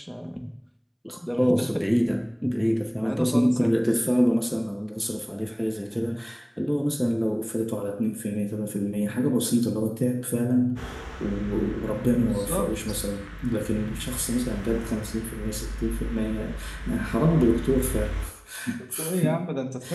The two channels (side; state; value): both; identical; correlation 1.00